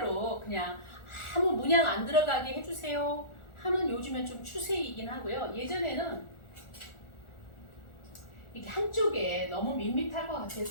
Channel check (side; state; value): right; late; 1.4 ms